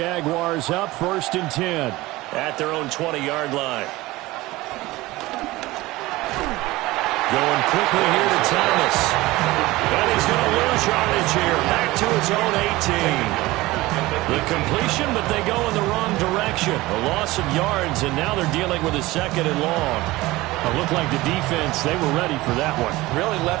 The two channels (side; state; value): left; quieter; 19.3 dB